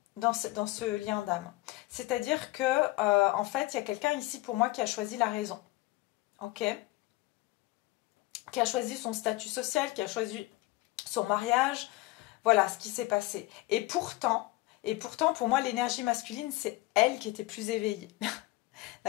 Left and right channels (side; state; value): right; quieter; 19.8 dB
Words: dans ce lien d'âme. C'est-à-dire que, en fait, il y a quelqu'un ici pour moi qui a choisi la raison. Ok? Qui a choisi son statut social, qui a choisi son mariage. Voilà ce qui s'est passé. Et pourtant, pour moi, l'énergie masculine, c'est elle qui était plus éveillée.